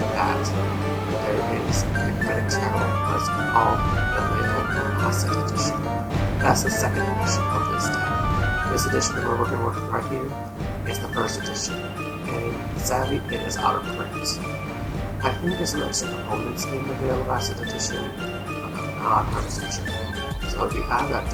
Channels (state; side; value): identical; both; correlation 1.00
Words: that there is the Hecate Tarot that's called the Classic Edition. That's the second edition of this deck. This edition that we're working with right here is the first edition, and sadly it is out of print. I think there's some extra components in the Veil of Acid edition, but I'm not 100% sure. So if you have that